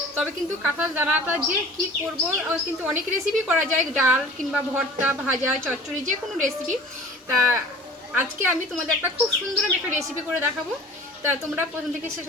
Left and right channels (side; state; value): both; normal; correlation 0.44